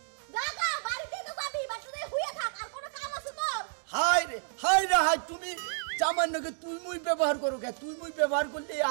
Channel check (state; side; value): silent; left; 57 dB below the other